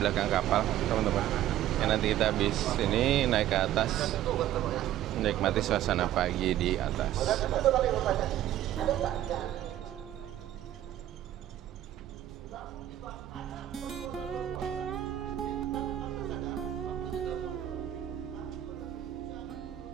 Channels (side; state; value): left; quieter; 12.6 dB